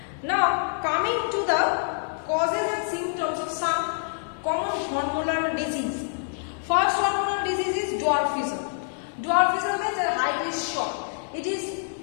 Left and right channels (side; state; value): right; silent; 57 dB below the other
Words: Now coming to the causes and symptoms of some common hormonal disease. First hormonal disease is dwarfism. Dwarfism means the height is short. It is